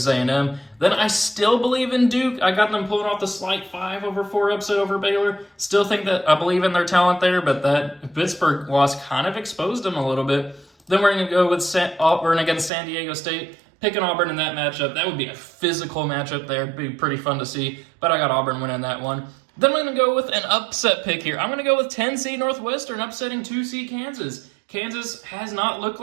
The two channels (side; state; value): left; drops out; at 12.7 s